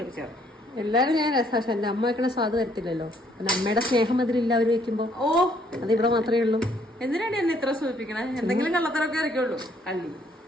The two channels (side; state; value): both; normal; correlation 0.66